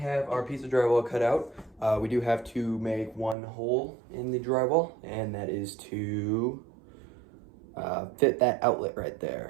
our piece of drywall cut out, we do have to make one hole in the drywall, and that is to fit that outlet right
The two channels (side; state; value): left; drops out; at 3.4 s